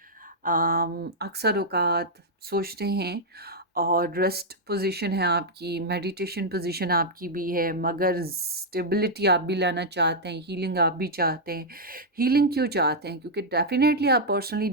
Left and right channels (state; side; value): normal; both; correlation -0.04